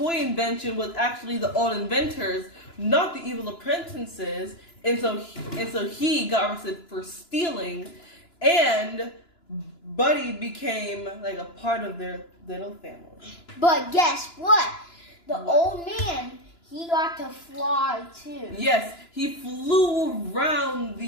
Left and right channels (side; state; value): right; late; 2.9 ms